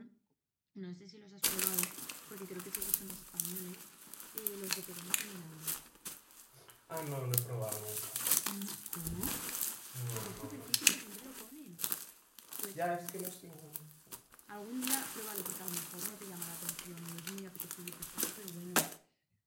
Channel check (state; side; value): identical; both; correlation 1.00